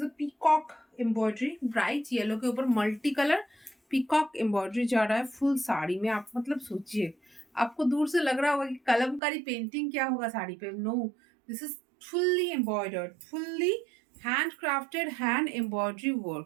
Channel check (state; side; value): drops out; left; at 9.2 s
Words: a peacock embroidery, bright yellow के ऊपर मल्टी कलर पीकॉक एम्ब्रॉयडरी जा रहा है full sari में। आप मतलब सोचिए, आपको दूर से लग रहा होगा कि कलमकारी पेंटिंग क्या होगा साड़ी पे, no, this is fully embroidered, fully hand crafted hand embroidery